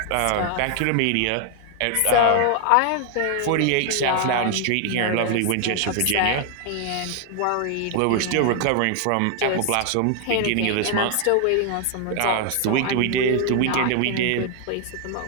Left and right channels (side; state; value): both; different; correlation 0.00